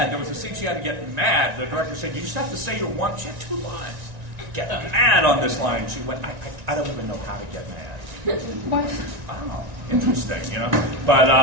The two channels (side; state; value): left; late; 1.9 ms